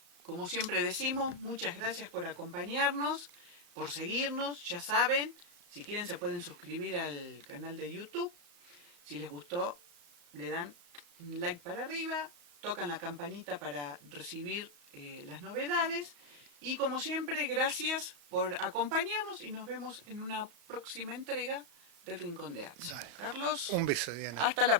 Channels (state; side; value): late; left; 34 ms